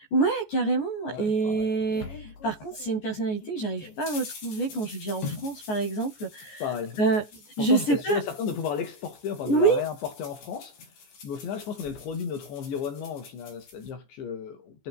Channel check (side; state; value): right; late; 14 ms